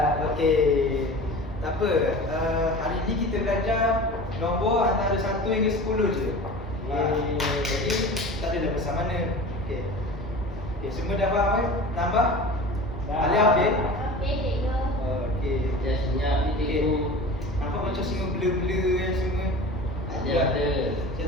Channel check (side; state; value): both; normal; correlation 0.37